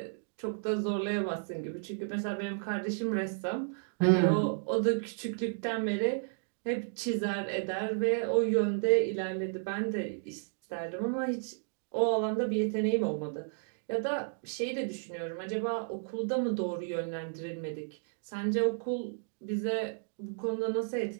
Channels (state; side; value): silent; left; digital silence